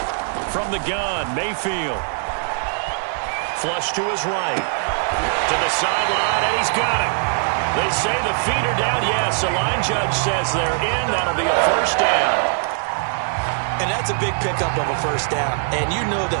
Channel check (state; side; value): silent; left; digital silence